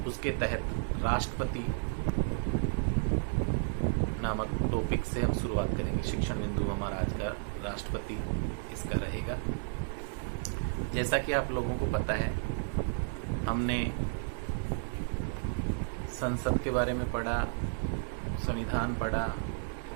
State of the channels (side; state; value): left; silent; 56 dB below the other